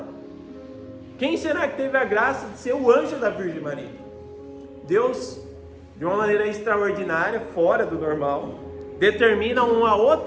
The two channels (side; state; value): both; identical; correlation 1.00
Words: Quem será que teve a graça de ser o anjo da Virgem Maria? Deus, de uma maneira extraordinária, fora do normal, determina uma